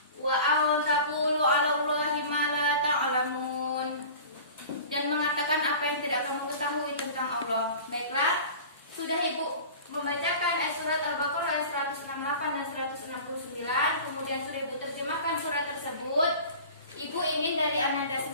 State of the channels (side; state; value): both; inverted; correlation -0.39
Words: Wa aw taqulu 'ala Allahi ma la ta'lamun. Dan mengatakan apa yang tidak kamu ketahui tentang Allah. Baiklah, sudah Ibu membacakan ayat surat Al-Baqarah ayat 168 dan 169, kemudian sudah Ibu terjemahkan surat tersebut. Ibu ingin dari Ananda